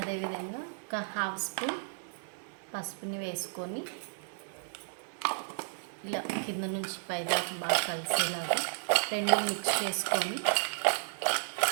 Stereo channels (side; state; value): left; silent; digital silence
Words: ఒక హాఫ్ స్పూన్ పసుపుని వేసుకొని ఇలా కింద నుంచి పైదాకా బాగా కలిసేలాగా రెండు మిక్స్ చేసుకొని